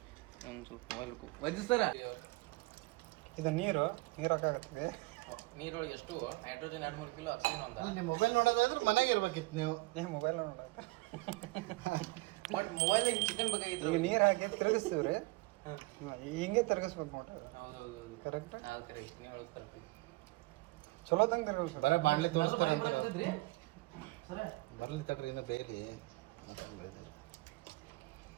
ಒಂದು ಸ್ವಲ್ಪ ಮೊಬೈಲ್ ವಜ್ಜಿ ಸರ ಇದು ನೀರು ಹಾಕಾಗತ್ತೆ. ನೀರೊಳಗೆ ಎಷ್ಟು ನೈಟ್ರೋಜನ್ 2-3 ಕಿಲೋ ಆಕ್ಸಿಜನ್ ಅಂತ. ನೀವು ಮೊಬೈಲ್ ನೋಡೋದಾದ್ರೆ ಮನೆಗೆ ಇರ್ಬೇಕಿತ್ತು ನೀವು. ಮೊಬೈಲ್ ನೋಡ ಬಟ್ ಮೊಬೈಲ್ ಚಿಕನ್ ಬೇಕಾಗಿತ್ತು. ಈಗ ನೀರು ಹಾಕಿ ತಿರುಗಿಸ್ತೀವ್ರಿ, ಹಿಂಗೆ ತಿರುಗಿಸ್ಬೇಕು ನೋಡ್ರಿ. ಹೌದೌದು ಕರೆಕ್ಟ್, ಅದು ಕರೆಕ್ಟ್. ನೀವು ಹೇಳೋದು ಕರೆಕ್ಟ್. ಚಲೋ ತಂಗ ತಿರುಗಿಸ್ಬೇಕು. ಬರೀ ಬಾಣ್ಲೆ ತೋರಿಸ್ತಾರೆ ಅಂತ ಬರ್ಲಿ ತಡ್ರಿ, ಇನ್ನು ಬೇಯ್ರಿ.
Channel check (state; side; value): quieter; left; 23.1 dB